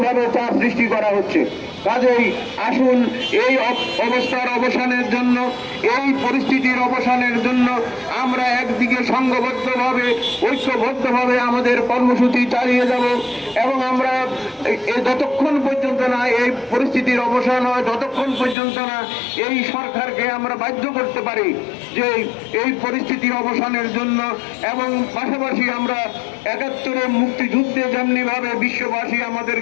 চাপ সৃষ্টি করা হচ্ছে। কাজেই আসুন এই অবস্থার অবসানের জন্য, এই পরিস্থিতির অবসানের জন্য আমরা একদিকে সংঘবদ্ধভাবে, ঐক্যবদ্ধভাবে আমাদের কর্মসূচি চালিয়ে যাব এবং আমরা যতক্ষণ পর্যন্ত না এই পরিস্থিতির অবসান হয়, যতক্ষণ পর্যন্ত না এই সরকারকে আমরা বাধ্য করতে পারি যে এই পরিস্থিতির অবসানের জন্য, এবং পাশাপাশি আমরা ৭১-এর মুক্তিযুদ্ধে যেমনিভাবে বিশ্ববাসী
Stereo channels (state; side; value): drops out; right; at 18.6 s